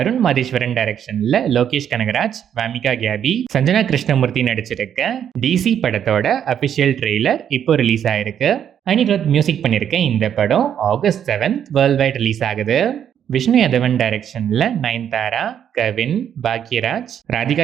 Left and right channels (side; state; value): left; quieter; 9.1 dB